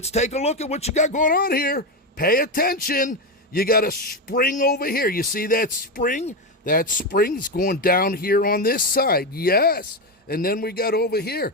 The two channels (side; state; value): both; normal; correlation 0.12